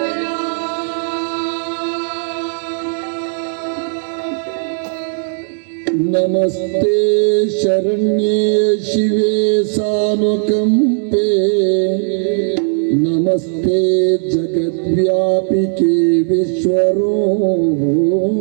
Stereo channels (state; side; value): silent; left; 61 dB below the other